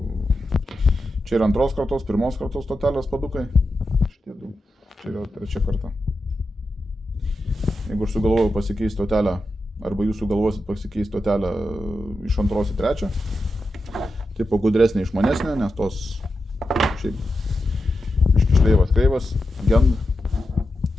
čia yra antros kartos, pirmos kartos stotelės padukai. Šitie du. Čia yra trečia karta. Jeigu aš sugalvojau pasikeisti stotelę, arba jūs sugalvosit pasikeisti stotelę iš antros į trečią, tipo gudresnė išmanesnė, nes tos šiaip iškišleivas kreivas, gend.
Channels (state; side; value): normal; both; correlation 0.89